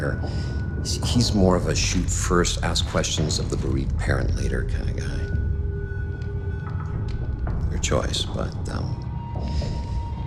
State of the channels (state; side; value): identical; both; correlation 1.00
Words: he's more of a shoot first, ask questions of the bereaved parent later kind of guy. Your choice, but,